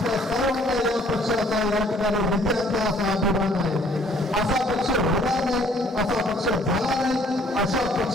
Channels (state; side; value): normal; both; correlation 0.60